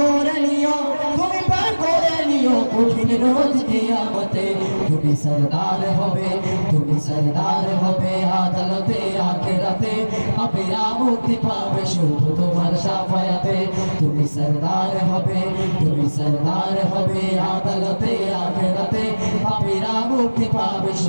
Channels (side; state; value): both; inverted; correlation -1.00